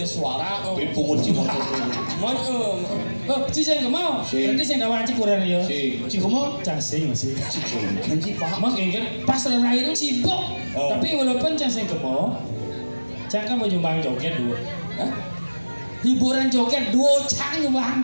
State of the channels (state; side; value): inverted; both; correlation -1.00